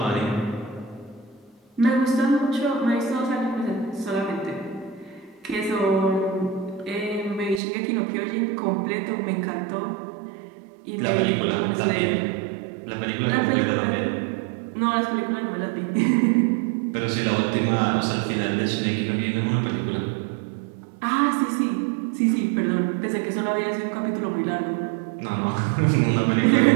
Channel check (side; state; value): left; drops out; at 7.6 s